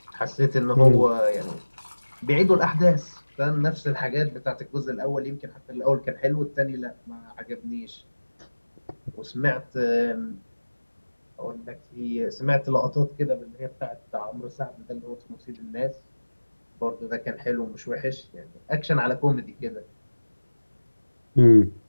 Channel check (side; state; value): both; inverted; correlation -1.00